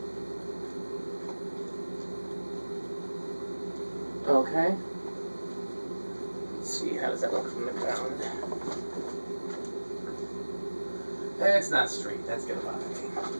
Okay. Let's see, how does that look from the ground? It's not straight, that's gonna bother me.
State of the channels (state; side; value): inverted; both; correlation -1.00